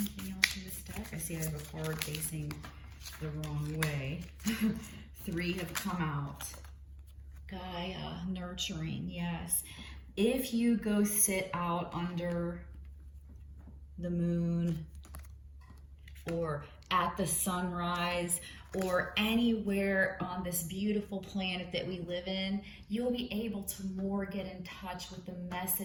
else in this deck? I see I have a card facing the wrong way. 3 have come out. Gaia, nurturing, yes. If you go sit out under the moon or at the sunrise or anywhere on this beautiful planet that we live in, you'll be able to more get in touch with the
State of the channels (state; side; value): identical; both; correlation 1.00